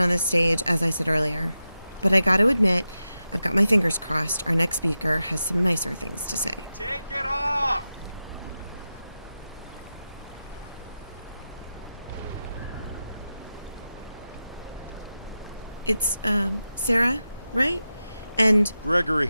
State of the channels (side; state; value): both; inverted; correlation -0.91